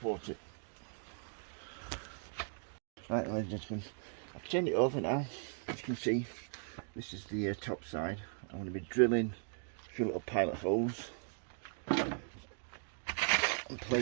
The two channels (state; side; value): silent; left; 52 dB below the other